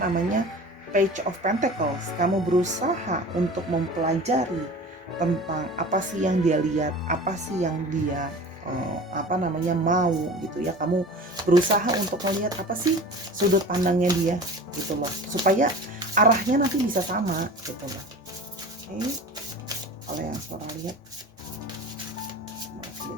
Page of Pentacles. Kamu berusaha untuk mempelajari tentang apa sih yang dia lihat, apa sih yang dia mau gitu ya. Kamu berusaha untuk melihat apa sih sudut pandangnya dia gitu loh, supaya arahnya nanti bisa sama gitu loh. Oke, kalau yang Sora lihat masih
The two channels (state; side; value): normal; both; correlation 0.38